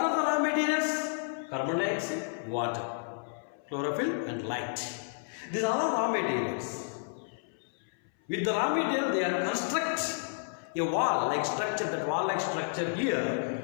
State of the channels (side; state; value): right; silent; 57 dB below the other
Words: the raw materials? Carbon dioxide, water, chlorophyll and light. These are all raw materials. With the raw material they are construct a wall-like structure. That wall-like structure here,